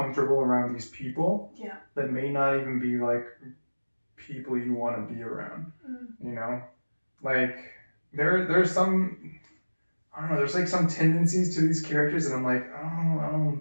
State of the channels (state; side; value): inverted; both; correlation -1.00